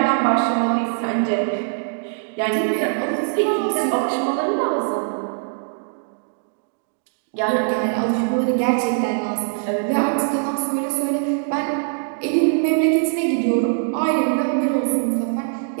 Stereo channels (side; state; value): left; silent; digital silence